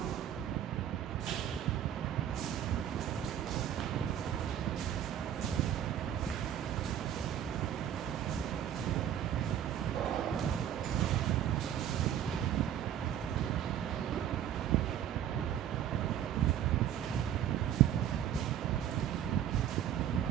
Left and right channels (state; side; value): quieter; left; 10.2 dB